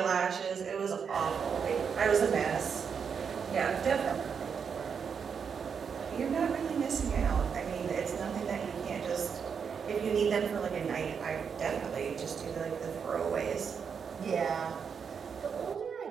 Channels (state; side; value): quieter; left; 6.6 dB